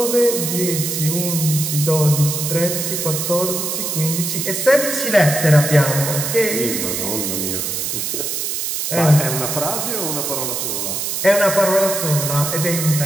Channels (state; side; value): noise; right; hiss, 2 dB below the sound